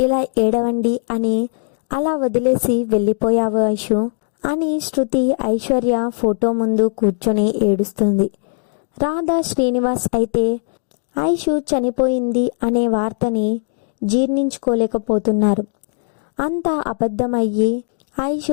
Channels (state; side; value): silent; right; 67 dB below the other